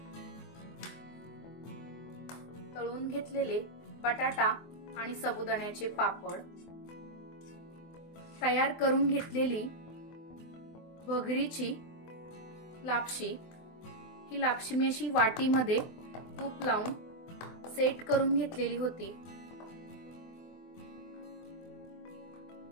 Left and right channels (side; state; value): right; late; 24 ms